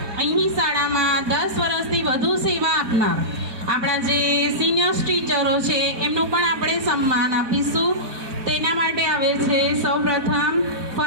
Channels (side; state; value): left; late; 4.1 ms